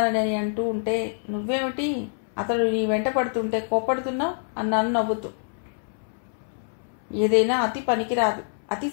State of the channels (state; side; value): silent; right; 61 dB below the other